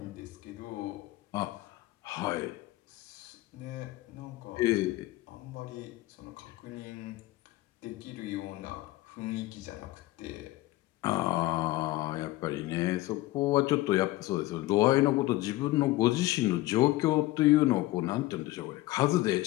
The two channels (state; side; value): quieter; right; 18.1 dB